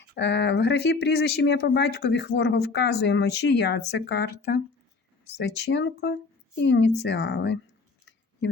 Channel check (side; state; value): right; quieter; 4.1 dB